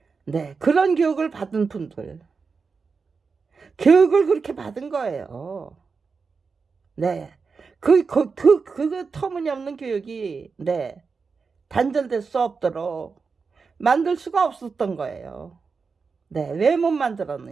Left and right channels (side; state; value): left; quieter; 5.0 dB